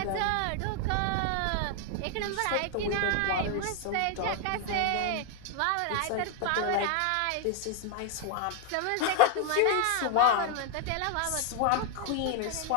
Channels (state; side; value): different; both; correlation 0.00